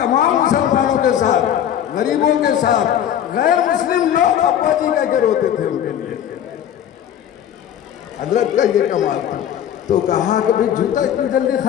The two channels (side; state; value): right; quieter; 10.2 dB